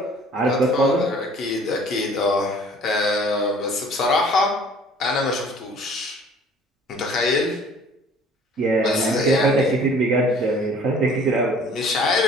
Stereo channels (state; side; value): normal; both; correlation 0.52